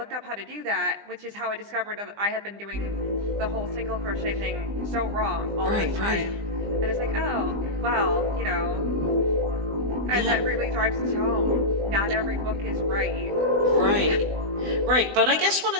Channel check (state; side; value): late; left; 20 ms